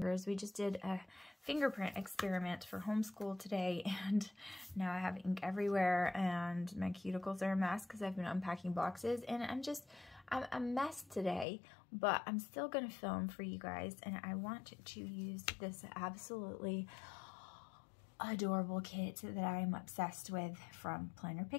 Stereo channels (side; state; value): right; drops out; at 11.5 s